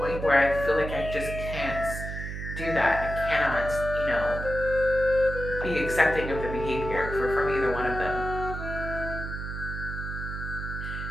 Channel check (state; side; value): noise; right; hum, 6 dB below the sound